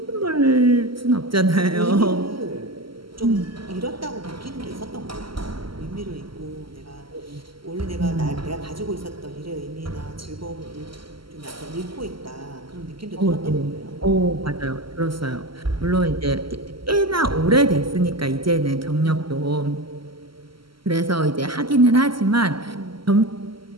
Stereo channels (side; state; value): left; late; 0.74 ms